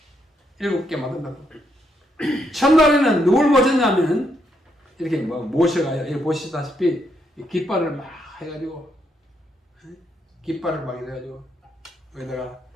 7개 만든다고. 첫날에는 누굴 모셨냐면 이렇게 모셔가요. 이렇게 보시다시피 깃발을 막 해가지고 여기다가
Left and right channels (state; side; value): normal; both; correlation 0.77